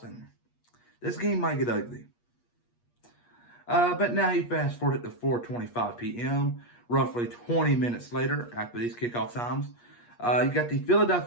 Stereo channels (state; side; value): late; right; 8.4 ms